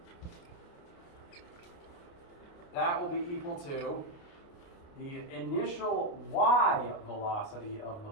That will be equal to the initial y velocity of the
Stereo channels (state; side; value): late; right; 29 ms